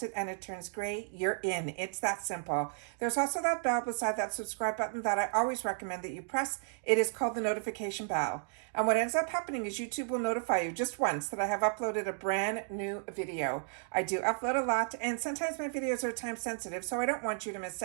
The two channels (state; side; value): silent; left; digital silence